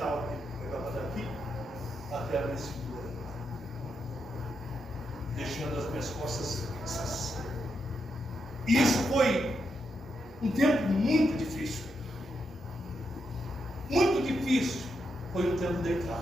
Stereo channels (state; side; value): normal; both; correlation 0.83